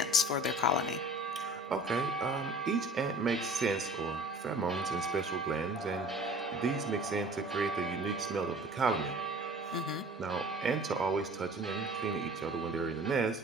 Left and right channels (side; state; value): both; normal; correlation 0.46